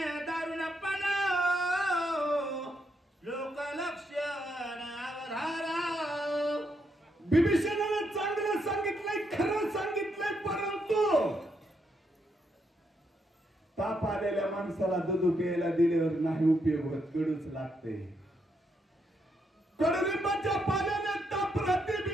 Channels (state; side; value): normal; both; correlation 0.79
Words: दारुणपण लोकलक्षण अवधारा विभीषणाने चांगलं सांगितलंय खरं सांगितलंय परंतु ताप आलेल्या माणसाला दूध प्यायला दिल्यावर नाही उपयोग होत कडूच लागते कडुलिंबाच्या पाल्याने ताप राहते